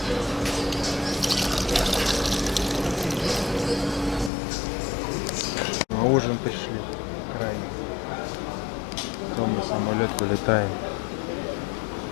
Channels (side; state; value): right; drops out; at 4.3 s